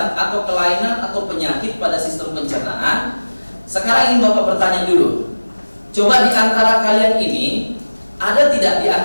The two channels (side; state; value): both; inverted; correlation -1.00